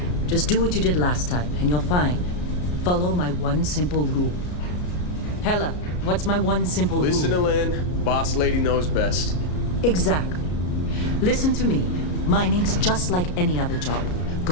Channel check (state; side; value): late; right; 33 ms